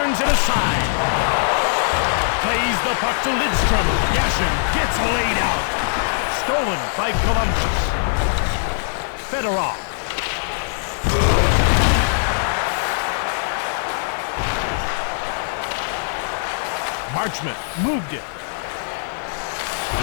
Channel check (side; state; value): right; silent; digital silence